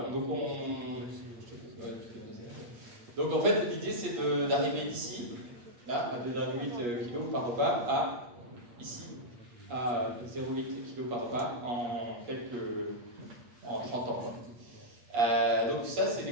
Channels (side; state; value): left; late; 8.4 ms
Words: Donc en fait, l'idée, c'est d'arriver d'ici, là, à 2,8 kg par repas, à ici, à 0,8 kg par repas en 30 ans. Donc ça, c'est des